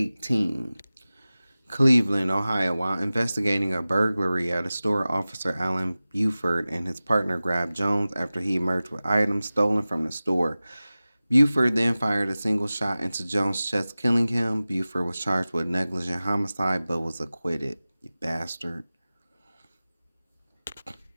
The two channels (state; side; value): inverted; both; correlation -0.97